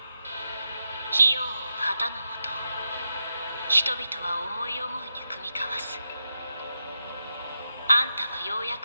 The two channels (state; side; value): inverted; both; correlation -0.86